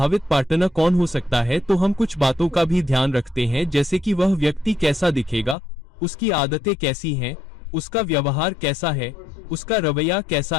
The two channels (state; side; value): drops out; right; at 5.6 s